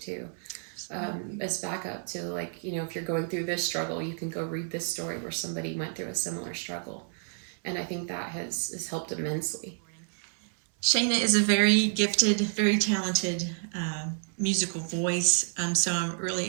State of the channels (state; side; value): silent; left; 58 dB below the other